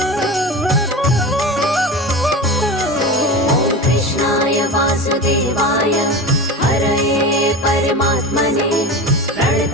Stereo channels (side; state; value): both; normal; correlation 0.28